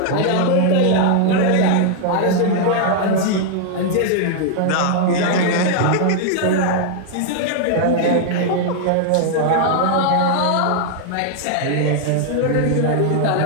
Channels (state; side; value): different; both; correlation 0.00